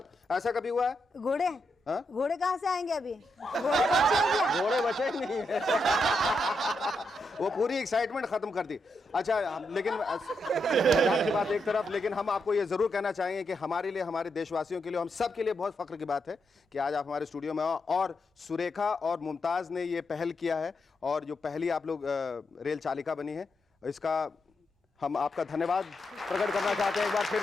ऐसा कभी हुआ है? घोड़े, हाँ? घोड़े कहाँ से आएंगे अभी? घोड़े बच्चे हैं क्या? घोड़े बचे ही नहीं है। वो पूरी एक्साइटमेंट खत्म कर दी। अच्छा, लेकिन मजाक की बात एक तरफ, लेकिन हम आपको ये जरूर कहना चाहेंगे कि हमारे लिए, हमारे देशवासियों के लिए, हम सब के लिए बहुत फख्र की बात है कि आज आप हमारे स्टूडियो में आओ और सुरेखा और मुमताज ने ये पहल किया है और जो पहली आप लोग रेल चालिका बनी है, इसका हम आपका धन्यवाद प्रकट करना चाहते हैं एक बार फिर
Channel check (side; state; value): both; normal; correlation 0.83